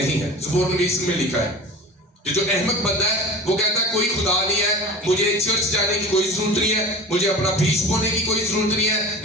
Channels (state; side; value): normal; both; correlation 0.36